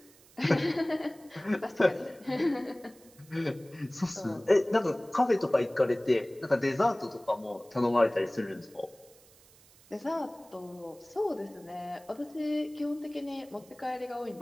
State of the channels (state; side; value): noise; right; hiss, 26 dB below the sound